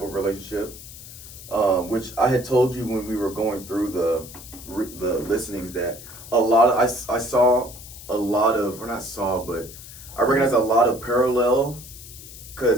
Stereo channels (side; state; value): left; noise; hiss, 15 dB below the sound